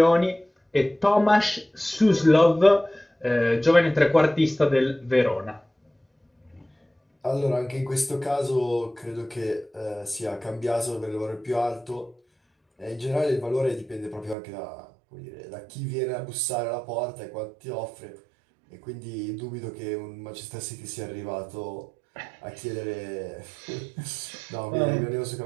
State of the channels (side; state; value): left; drops out; at 14.4 s